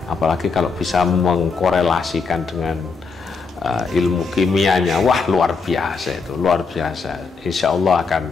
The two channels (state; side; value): quieter; right; 4.8 dB